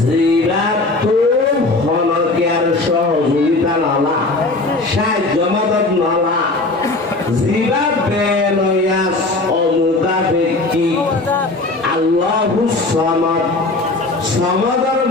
হনকিয়ার সহযোগিতা নালা সাহায্য মদত নালা জিরাত বেনয়াস অমুকা ব্যক্তি আল্লাহুস সামাদ সমাদর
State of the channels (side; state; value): right; quieter; 3.1 dB